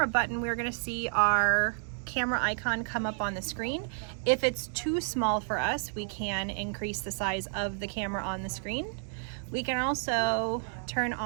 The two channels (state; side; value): silent; left; 57 dB below the other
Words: button, we're gonna see our camera icon come up on the screen. If it's too small for us, we can increase the size of the camera on the screen. We can also turn